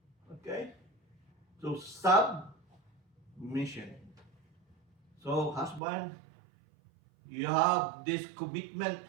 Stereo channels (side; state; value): left; drops out; at 5.8 s